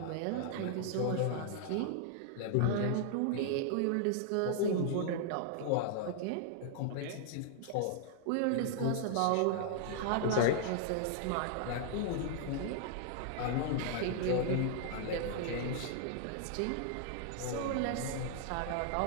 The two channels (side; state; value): both; different; correlation -0.01